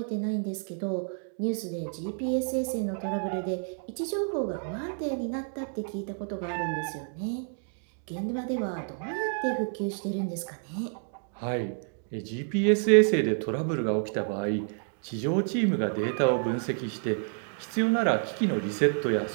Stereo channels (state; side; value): silent; left; 56 dB below the other